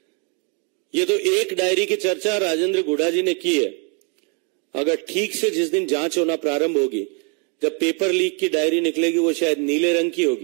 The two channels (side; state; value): left; quieter; 37.1 dB